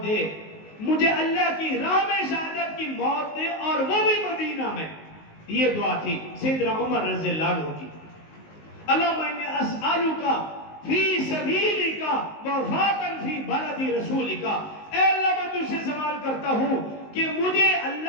دے, مجھے اللہ کی راہ میں شہادت کی موت دے, اور وہ بھی مدینہ میں. یہ دعا تھی سیدنا عمر رضی اللہ عنہ کی. اللہم انی اسألک فی سبیلک وفاتا فی بلد رسولک, اے اللہ میں تجھ سے سوال کرتا ہوں کہ مجھے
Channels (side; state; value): right; late; 19 ms